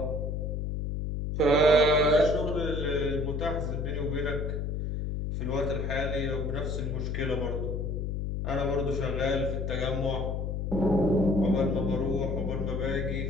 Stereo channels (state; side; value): noise; left; hum, 2 dB below the sound